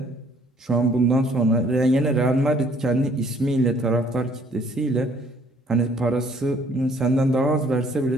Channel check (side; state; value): both; normal; correlation 0.61